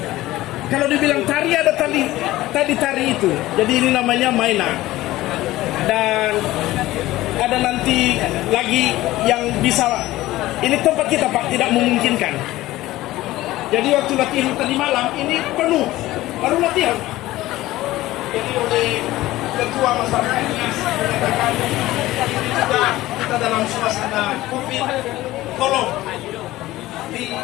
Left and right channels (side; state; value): right; quieter; 16.8 dB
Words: Kalau dibilang tari, ada tadi tari itu. Jadi ini namanya mainan. Dan ada nanti lagi yang bisa, ini tempat kita, Pak, tidak memungkinkan. Jadi waktu latihan tadi malam ini penuh, baru latihan. Jadi oleh ketua masyarakat Nias menyatakan ini juga kita dalam suasana COVID, tolong